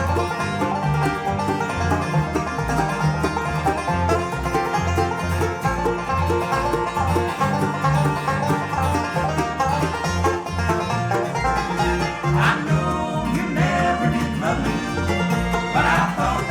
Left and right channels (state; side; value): identical; both; correlation 1.00